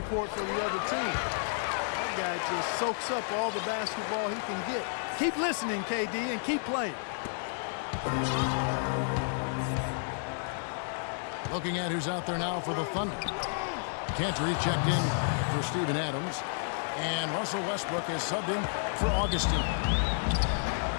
for the other team. That guy just soaks up all the basketball he can get. Keep listening, KD, and keep playing. Looking at who's out there now for the Thunder. Cantor checked in for Steven Adams. And Russell Westbrook is subbed in for Augustine.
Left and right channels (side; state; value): right; silent; digital silence